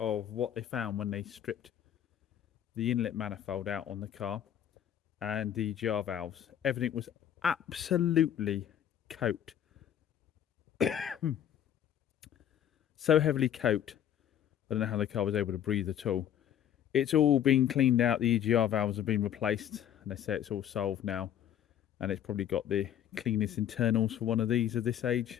what they found when they stripped the inlet manifold out on the car and the GR valves. Everything was absolutely coated. So heavily coated. I don't know how the car was able to breathe at all. It's all been cleaned out. The EGR valves have been replaced, and they say it's all solved now. And it's probably got the cleanest internals for one of these of this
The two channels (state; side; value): quieter; right; 10.2 dB